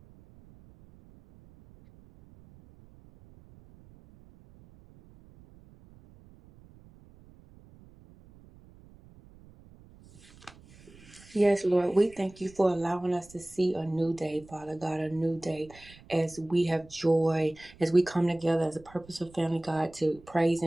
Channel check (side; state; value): right; noise; rumble, 23 dB below the sound